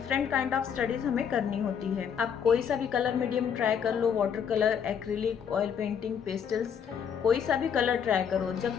काइंड ऑफ स्टडीज़ हमें करनी होती है। आप कोई सा भी कलर मीडियम ट्राई कर लो, water colour, acrylic, oil painting, pastels, कोई सा भी कलर ट्राई करो, जब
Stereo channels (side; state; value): right; quieter; 7.6 dB